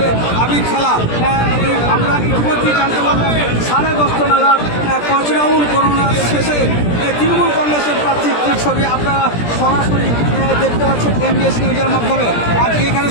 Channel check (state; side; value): late; right; 17 ms